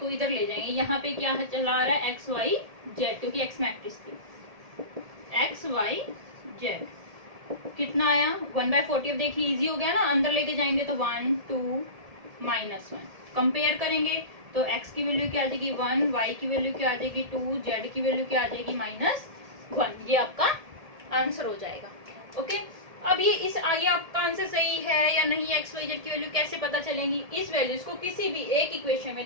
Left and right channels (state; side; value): late; left; 1.7 ms